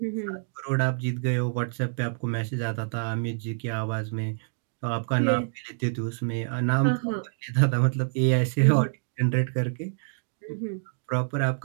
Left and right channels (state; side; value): silent; left; digital silence